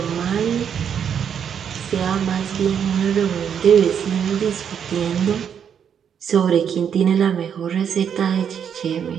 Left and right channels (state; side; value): quieter; left; 8.0 dB